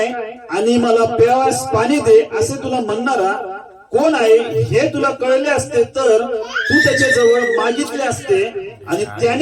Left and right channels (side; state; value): both; identical; correlation 1.00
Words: आणि मला प्यावास पाणी दे असे तुला म्हणणारा कोण आहे हे तुला कळले असते तर तू त्याच्या जवळ मागितले असते आणि